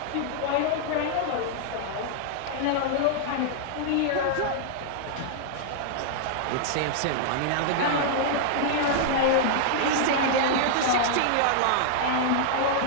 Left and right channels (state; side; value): different; both; correlation -0.01